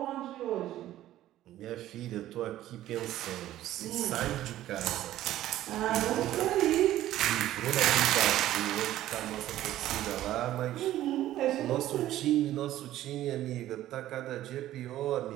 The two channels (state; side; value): quieter; left; 13.8 dB